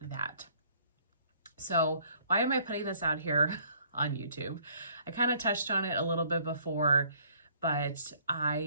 that. So why am I putting this out here on YouTube? I kind of touched on it a little bit before, but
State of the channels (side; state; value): both; inverted; correlation -0.61